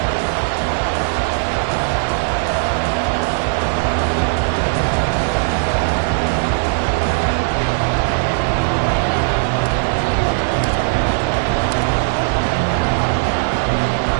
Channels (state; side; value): silent; left; 67 dB below the other